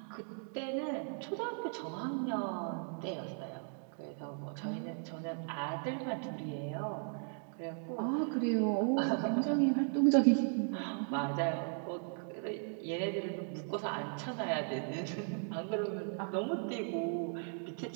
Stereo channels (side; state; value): left; silent; 53 dB below the other